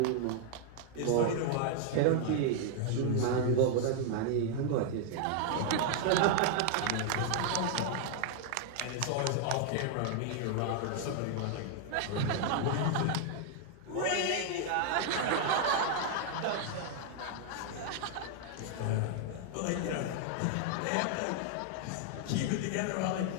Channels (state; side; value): different; both; correlation 0.00